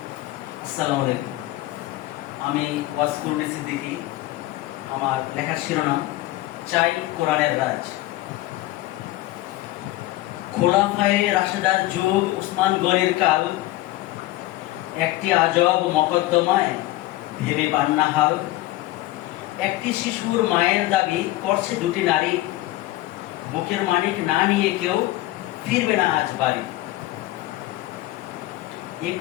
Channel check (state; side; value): quieter; right; 17.4 dB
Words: আসসালামু আলাইকুম। আমি ওয়াসকুরুনি সিদ্দিকী। আমার লেখার শিরোনাম চাই কোরআনের রাজ। খোলাফায়ে রাশেদার যুগ, উসমান গনির কাল, একটি আজব মকদ্দমায় ভেবে পান না হাল। একটি শিশুর মায়ের দাবি করছে দুটি নারী, বুকের মানিক না নিয়ে কেউ ফিরবে না আজ বাড়ি।